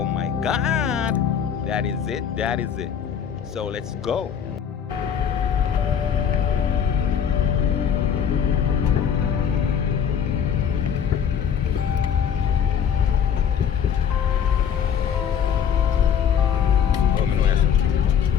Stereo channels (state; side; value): quieter; right; 8.0 dB